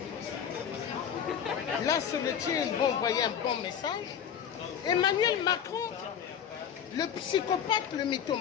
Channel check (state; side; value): quieter; right; 8.5 dB